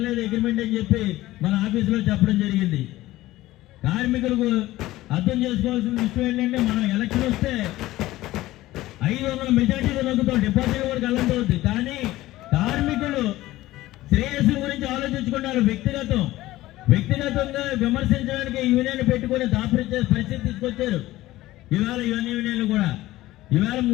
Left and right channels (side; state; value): right; quieter; 16.7 dB